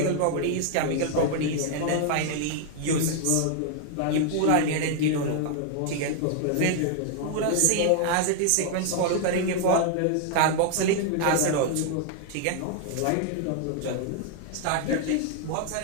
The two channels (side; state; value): both; different; correlation 0.00